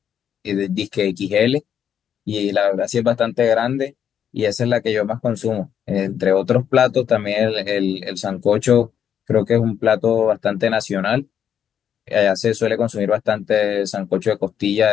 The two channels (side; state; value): right; quieter; 8.8 dB